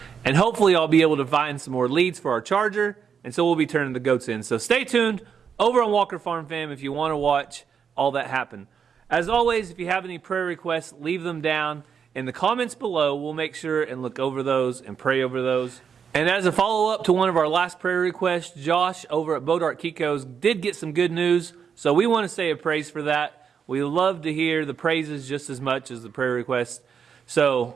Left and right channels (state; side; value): quieter; left; 7.0 dB